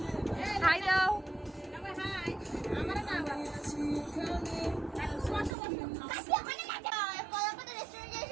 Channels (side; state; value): left; drops out; at 5.6 s